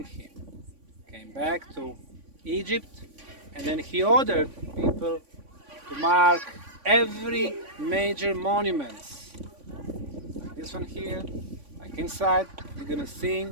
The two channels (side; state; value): left; late; 3.5 ms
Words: him. Came back to Egypt, and then he ordered people to mark every major monument. Like this one here, like inside, you're gonna see